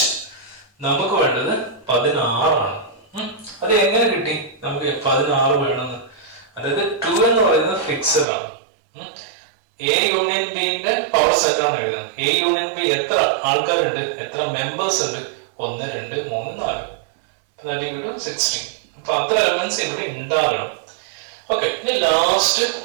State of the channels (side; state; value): left; drops out; at 8.2 s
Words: നമുക്ക് വേണ്ടത് 16 ആണ്. അത് എങ്ങനെ കിട്ടി നമുക്ക് 16 വേണമെന്ന്? അതായത് 2 എന്ന് പറയുന്നത് ഫിക്സഡ് ആണ്. എ യൂണിയൻ ബിന്റെ പവർ സെറ്റ് ആണ് എഴുതുന്നത്. എ യൂണിയൻ ബി എത്ര ആൾക്കാരുണ്ട്, എത്ര മെമ്പേഴ്സ് ഉണ്ട്? 1 2 3 4 16. അപ്പൊ അത്ര എലമെന്റ്സ് ഇവിടെ ഉണ്ടാകണം. ഓക്കെ, ഇനി ലാസ്റ്റ്